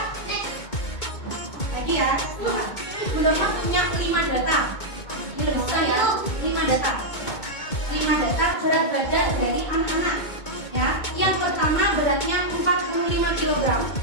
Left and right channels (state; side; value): late; right; 2.2 ms